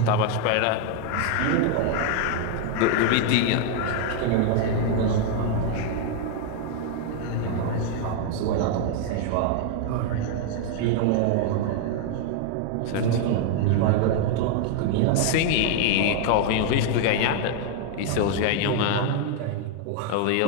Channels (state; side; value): different; both; correlation 0.00